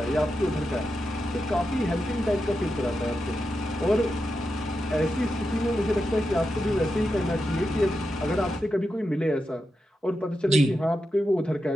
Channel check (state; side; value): normal; both; correlation 0.88